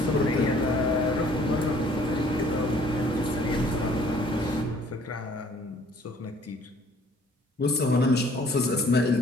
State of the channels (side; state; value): both; normal; correlation 0.58